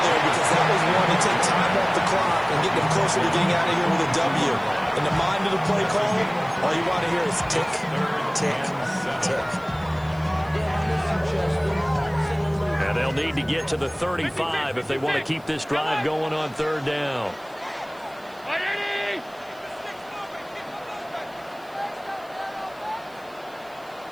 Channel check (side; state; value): right; noise; hiss, 28 dB below the sound